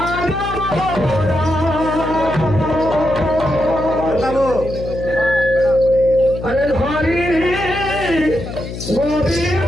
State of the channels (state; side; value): noise; left; hum, 9 dB below the sound